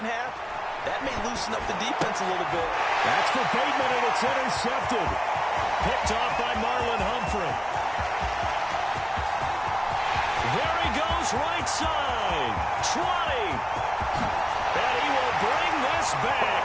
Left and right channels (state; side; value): identical; both; correlation 1.00